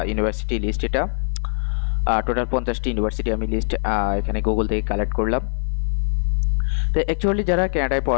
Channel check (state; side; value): silent; right; 60 dB below the other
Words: ইউনিভার্সিটি লিস্ট। এটা টোটাল 50টি ইউনিভার্সিটি আমি লিস্ট এখানে গুগল থেকে কালেক্ট করলাম। তো অ্যাকচুয়ালি যারা কানাডায়